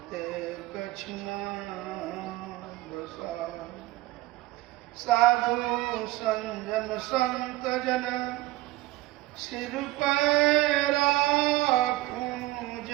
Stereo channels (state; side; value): quieter; left; 18.1 dB